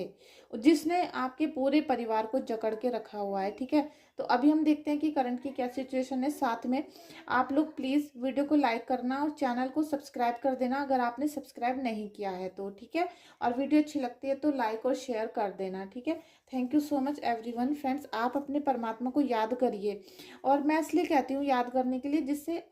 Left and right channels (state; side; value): identical; both; correlation 1.00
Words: जिसने आपके पूरे परिवार को जकड़ के रखा हुआ है। ठीक है, तो अभी हम देखते हैं कि करंट की क्या सिचुएशन है। साथ में आप लोग प्लीज़ वीडियो को लाइक करना और चैनल को सब्सक्राइब कर देना अगर आपने सब्सक्राइब नहीं किया है तो। ठीक है, और वीडियो अच्छी लगती है तो लाइक और शेयर कर देना। ठीक है, thank you so much everyone. Friends, आप अपने परमात्मा को याद करिए, और मैं इसलिए कहती हूँ याद करने के लिए, जिससे